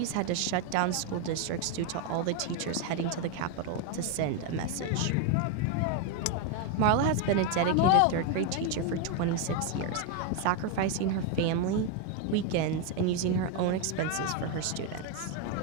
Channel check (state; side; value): different; both; correlation 0.01